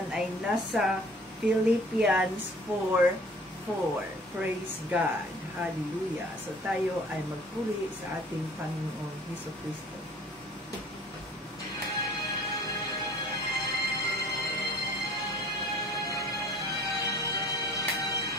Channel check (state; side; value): normal; both; correlation 0.51